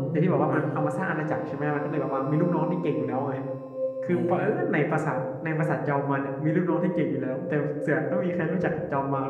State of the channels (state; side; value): identical; both; correlation 1.00